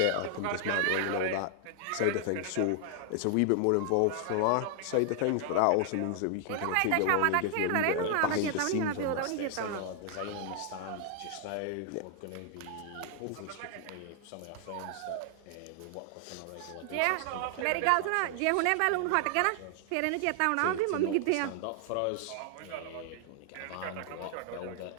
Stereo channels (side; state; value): both; different; correlation 0.00